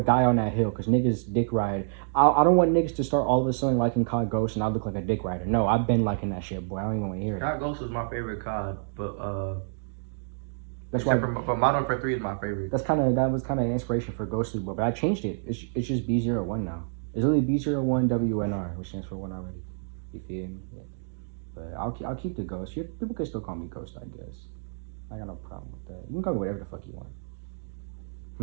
die on that hill because niggas dick ride. I don't want niggas to start all of a sudden liking COD Ghosts and I look like a dick rider. No, I've been liking that shit, boy. I don't even want to hear it. COD Ghost was my favorite COD, but That's why. for Modern Warfare 3 is my favorite. That was kind of inspiration for Ghostly, but I changed it. It's just B01 now. It's really B01 WNR, which stands for one already. You feel me? Yeah. But I'll keep the Ghost. People can still call me Ghost, I guess. I got no problem with that. You can call me whatever the fuck you want.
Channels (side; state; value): left; silent; digital silence